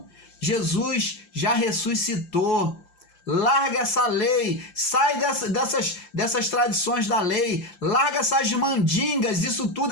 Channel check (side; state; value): right; late; 5.8 ms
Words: Jesus já ressuscitou. Larga essa lei, sai dessas tradições da lei, larga essas mandingas, isso